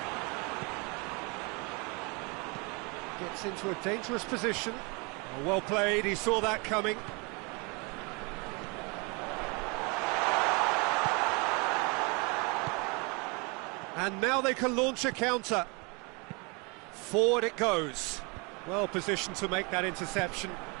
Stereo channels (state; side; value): quieter; left; 30.1 dB